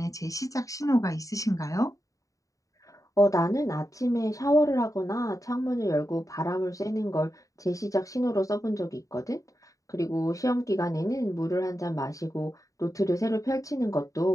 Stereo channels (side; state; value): right; late; 0.16 ms